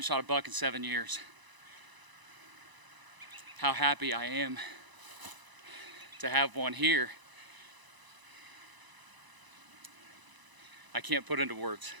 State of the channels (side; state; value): left; late; 1.0 ms